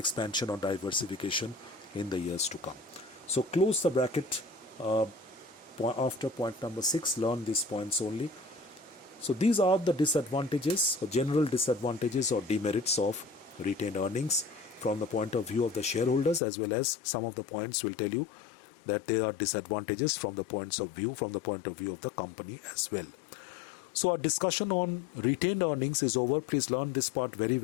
or diversification in the years to come. So close the bracket after point number 6. Learn these points only. So these are the disadvantages or general disadvantages or demerits of retained earnings from the point of view of the shareholders, as well as some of the points will tell you that there are disadvantages from the point of view of the company as well. So our discussion on retained earnings is over. Please learn this part very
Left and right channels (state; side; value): drops out; right; at 16.4 s